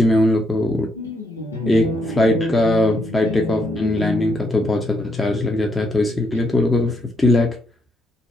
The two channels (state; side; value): normal; both; correlation 0.76